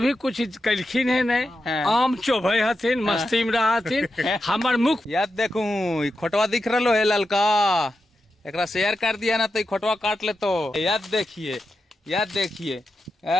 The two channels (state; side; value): normal; both; correlation 0.88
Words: कुछ कलखिन है नहीं। आम चोभे हथिन, मस्ती में रहा हथिन। हमार मुख याद देखू खोटवा दिख रहा है ललका, एकरा शेयर कर दिया ना तो ई खोटवा काट ले। तो याद देखिए, याद देखिए,